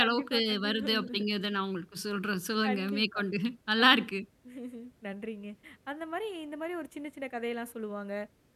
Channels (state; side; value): identical; both; correlation 1.00